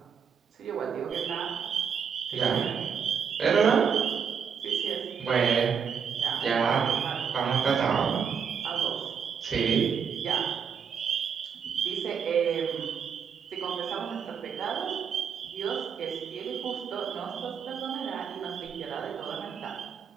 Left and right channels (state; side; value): quieter; left; 6.9 dB